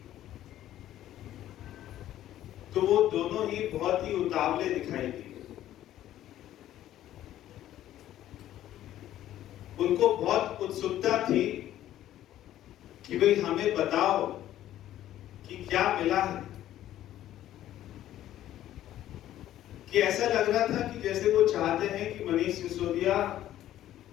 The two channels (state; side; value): quieter; right; 12.8 dB